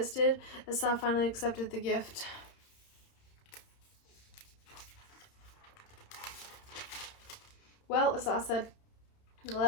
Esau finally accepted the gift. "Well," Esau said,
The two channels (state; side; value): late; right; 31 ms